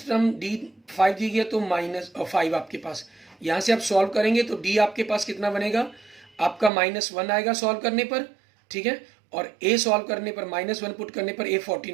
term d 5 दी गई है तो -5 आपके पास। यहाँ से आप सॉल्व करेंगे तो d आपके पास कितना बनेगा आपका -1 आएगा सॉल्व करने पर, ठीक है, और a सॉल्व करने पर -1 पुट करने पर a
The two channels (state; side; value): drops out; left; at 6.7 s